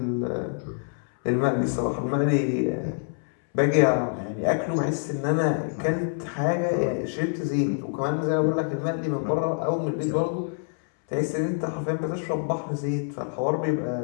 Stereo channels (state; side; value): silent; right; 61 dB below the other